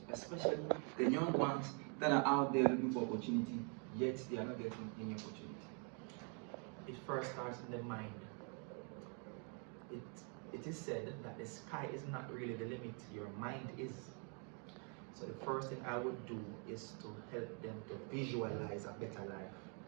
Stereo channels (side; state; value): left; quieter; 37.0 dB